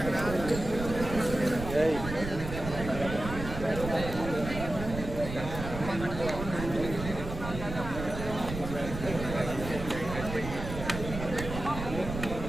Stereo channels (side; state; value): right; noise; rumble, 7 dB below the sound